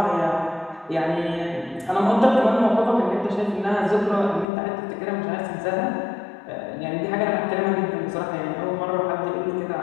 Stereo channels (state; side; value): drops out; right; at 4.5 s